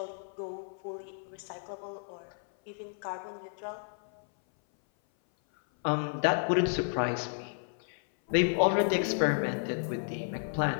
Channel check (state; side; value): silent; right; 56 dB below the other